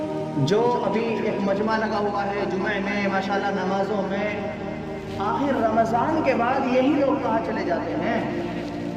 جو ابھی ایک مجمع لگا ہوا ہے جمعہ میں، ماشاءاللہ نمازوں میں، آخر رمضان کے بعد یہی لوگ کہاں چلے جاتے ہیں؟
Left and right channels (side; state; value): both; identical; correlation 1.00